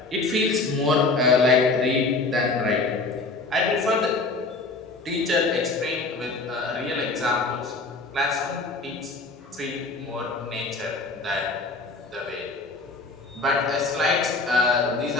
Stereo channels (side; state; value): right; quieter; 3.6 dB